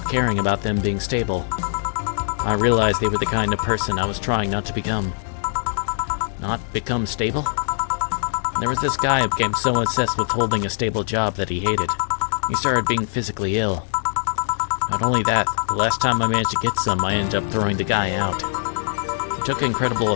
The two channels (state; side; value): silent; right; digital silence